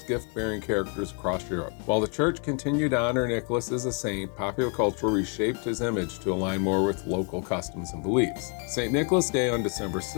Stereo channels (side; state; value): right; quieter; 37.5 dB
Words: gift-bearing characters across Europe. While the Church continued to honor Nicholas as a saint, popular culture reshaped his image to align more with local customs and beliefs. St. Nicholas Day on December